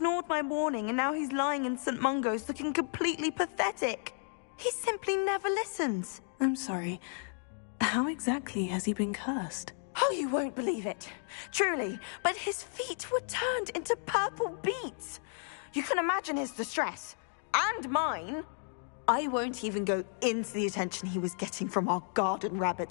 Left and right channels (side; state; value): right; silent; 56 dB below the other